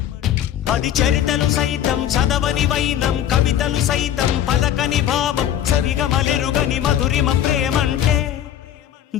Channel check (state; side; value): quieter; right; 10.8 dB